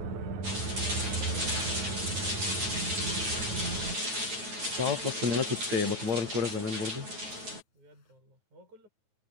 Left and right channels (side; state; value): left; late; 9.2 ms